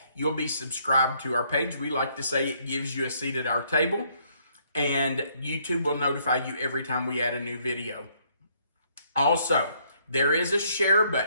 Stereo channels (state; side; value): inverted; both; correlation -0.68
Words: You'll be subscribed to our page. We like to say it gives you a seat at our table, and YouTube will notify you every time we add a new video. Also, there is a share